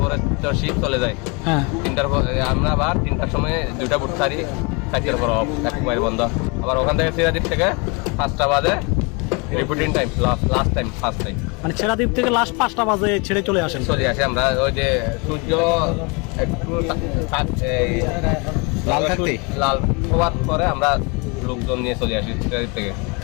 পরে তো শিপ চলে যায়, হ্যাঁ 3টার পরে আমরা আবার 3টার সময় 2টা বুট ছাড়ি, 4টার পর অফ, এক মাইল বন্ধ। আবার ওখান থেকে সিরাদ্বীপ থেকে 5টা বাজে reporting time, last time, first time. মানে ছেড়া দ্বীপ থেকে লাস্ট 5টা বাজে ছেড়ে চলে আসেন? চলে আসে আমরা ওই যে সূর্য একটু লাল হওয়ার পরে আমরা লোকজন নিয়ে চলে আসি সিরাদ্বীপ থেকে।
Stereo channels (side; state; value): right; quieter; 30.6 dB